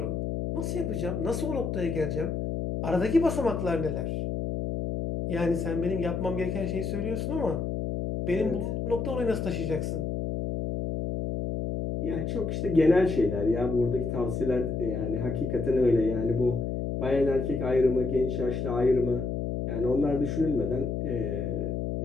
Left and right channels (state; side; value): noise; left; hum, 2 dB below the sound